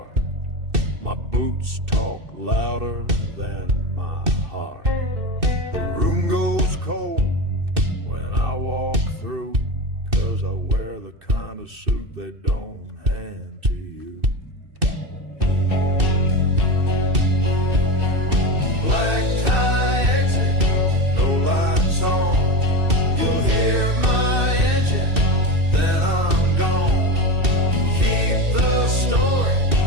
My boots talk louder than my heart. The room goes cold when I walk through, 'cause I wear the kind of suit they don't hand to you. Black tie exit, no lights on. You'll hear my engine, then I'm gone. Keep the story,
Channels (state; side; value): late; left; 2.6 ms